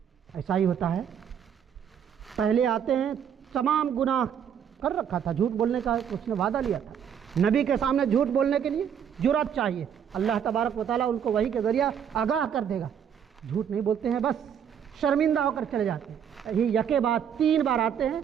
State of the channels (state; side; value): quieter; left; 8.4 dB